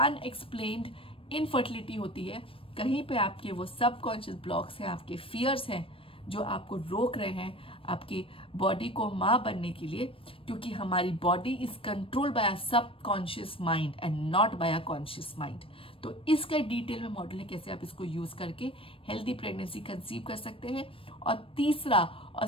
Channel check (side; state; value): right; late; 0.26 ms